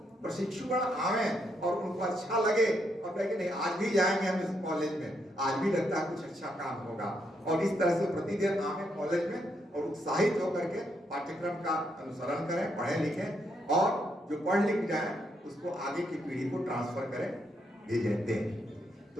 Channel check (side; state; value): both; normal; correlation 0.77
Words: प्रशिक्षुगण आवे और उनको अच्छा लगे और कहे कि नहीं आज भी जाएंगे हम इस कॉलेज में, आज भी लगता है कुछ अच्छा काम होगा, और इस तरह से प्रतिदिन आवे कॉलेज में और उत्साहित होकर के पाठ्यक्रम का अनुसरण करें, पढ़ें लिखें, और जो पढ़ लिख जाए उसको आगे की पीढ़ी को ट्रांसफर करें, भेजें, दें।